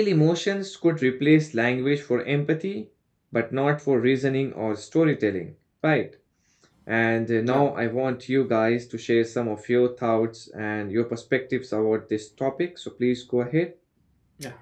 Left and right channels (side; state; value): both; identical; correlation 1.00